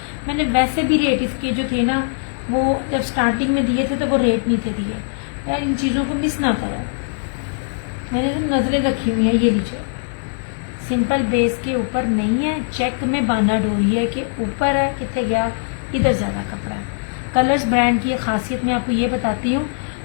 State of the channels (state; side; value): silent; right; digital silence